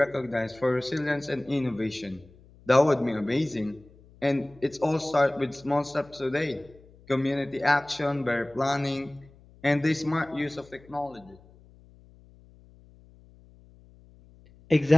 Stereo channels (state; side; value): noise; left; hum, 25 dB below the sound